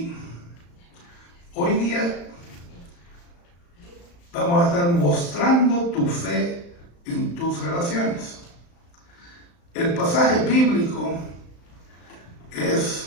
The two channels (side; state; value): right; late; 35 ms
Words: hoy día vamos a estar mostrando tu fe en tus relaciones. El pasaje bíblico